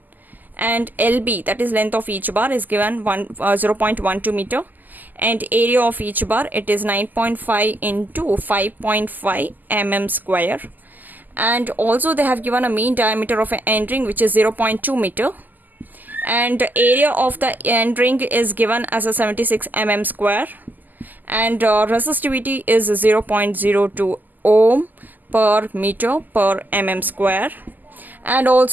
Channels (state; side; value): late; left; 0.085 ms